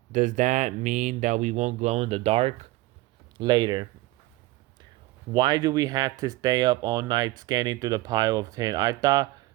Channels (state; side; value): quieter; left; 18.8 dB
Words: Does that mean that we won't glow in the dark? Later. Why do we have to stay up all night scanning through the pile of tin? I thought